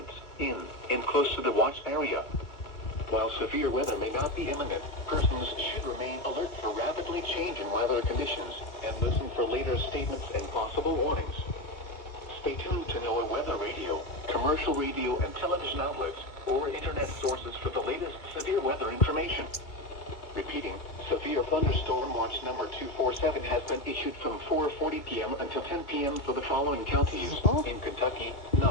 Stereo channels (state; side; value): late; right; 2.1 ms